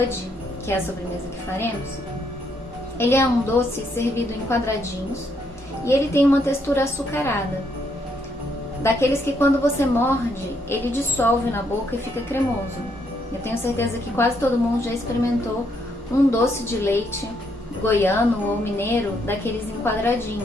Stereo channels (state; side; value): normal; both; correlation 0.74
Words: que é a sobremesa que faremos, ele é um doce servido em quadradinhos e ele tem uma textura açucarada, daqueles que quando você morde, ele dissolve na boca e fica cremoso. Eu tenho certeza que quase todo mundo já experimentou um doce de leite goiano ou mineiro, daqueles em